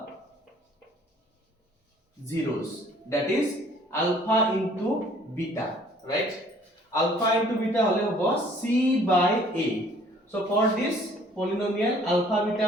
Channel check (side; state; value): both; normal; correlation 0.56